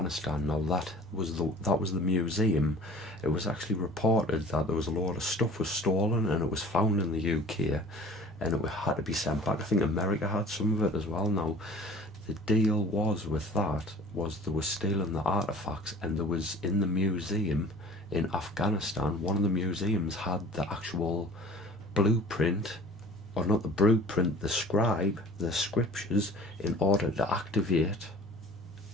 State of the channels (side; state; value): both; normal; correlation 0.46